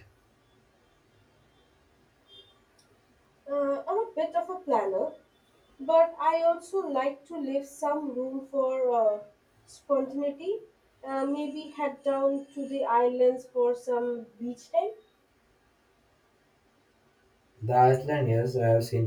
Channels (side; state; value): both; identical; correlation 1.00